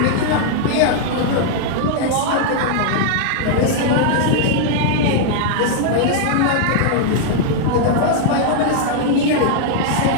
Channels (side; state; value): both; different; correlation -0.01